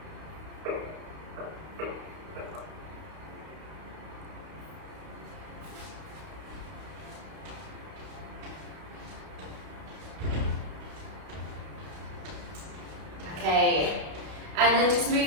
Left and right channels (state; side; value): late; left; 32 ms